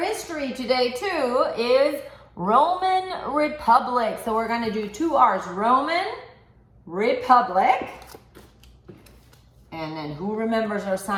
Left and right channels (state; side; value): identical; both; correlation 1.00